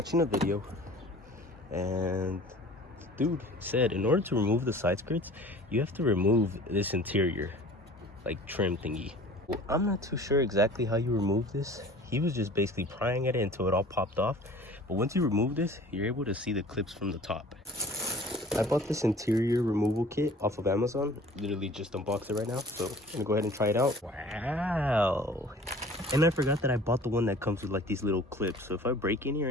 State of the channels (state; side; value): normal; both; correlation 0.47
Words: a video and dude said in order to remove the side skirts, you have to remove this interior like trim thingy. Well, I'm not too sure exactly how you remove this. He was just basically prying at it until it all popped off. But once you remove this, you're able to see the clips from the top. I bought this interior removal kit off of Amazon. Literally just unboxed it right now. So I'm gonna go ahead and try it out. Wow. And I forgot that I bought the one that comes with like these little clips. So if I break any or